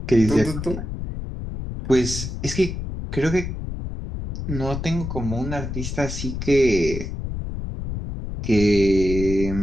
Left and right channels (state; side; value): noise; left; rumble, 6 dB below the sound